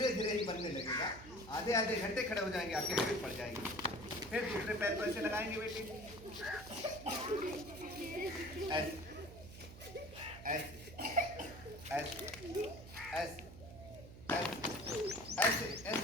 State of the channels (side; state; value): right; noise; hum, 15 dB below the sound